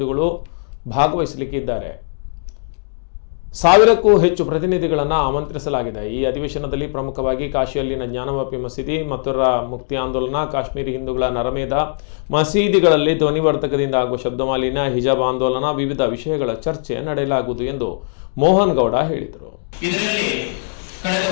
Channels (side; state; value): right; silent; digital silence